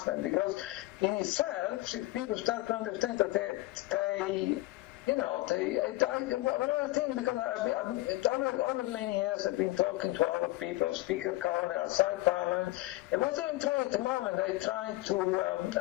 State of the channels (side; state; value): right; quieter; 18.7 dB